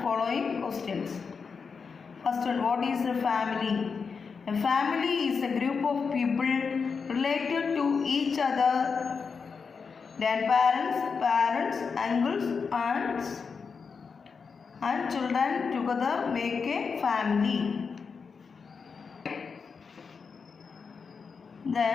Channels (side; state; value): right; quieter; 5.5 dB